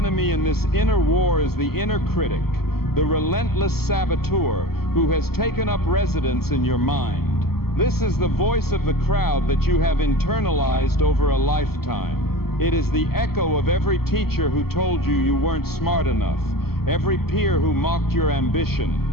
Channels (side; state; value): right; late; 0.95 ms